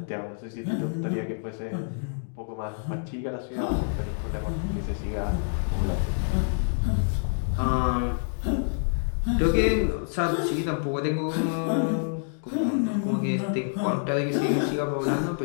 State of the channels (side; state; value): right; silent; digital silence